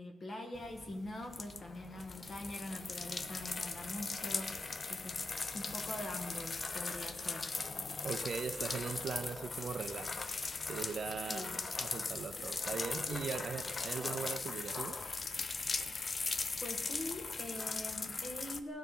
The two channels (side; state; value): both; normal; correlation 0.87